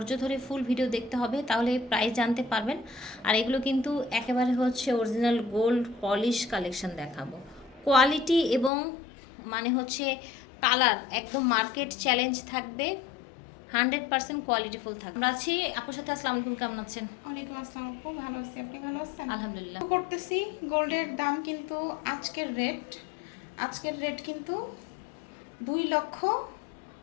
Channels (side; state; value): right; drops out; at 8.7 s